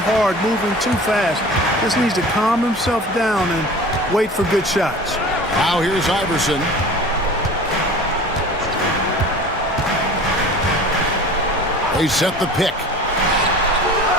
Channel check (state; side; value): normal; both; correlation 0.40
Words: hard, moving too fast. Just needs to calm himself down and wait for good shots. Now here's Iverson. They set the pick.